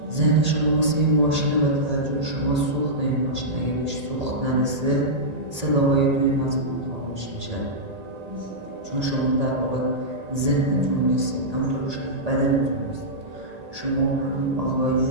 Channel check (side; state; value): left; late; 1.8 ms